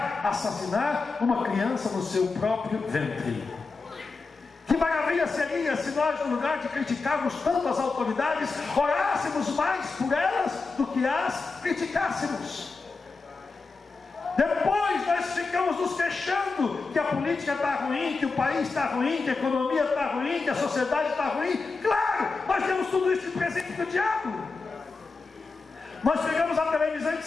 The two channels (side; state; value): right; quieter; 4.2 dB